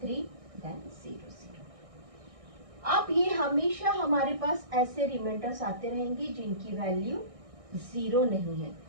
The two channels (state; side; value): late; left; 1.6 ms